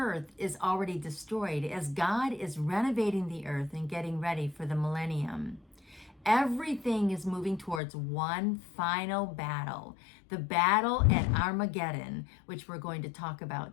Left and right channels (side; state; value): right; drops out; at 7.8 s